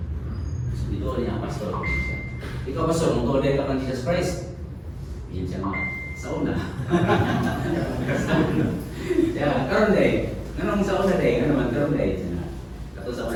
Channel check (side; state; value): both; identical; correlation 1.00